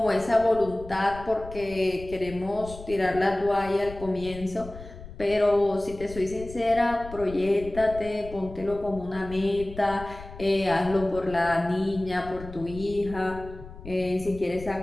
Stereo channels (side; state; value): left; noise; rumble, 14 dB below the sound